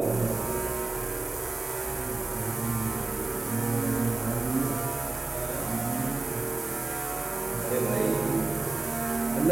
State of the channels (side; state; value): left; quieter; 3.3 dB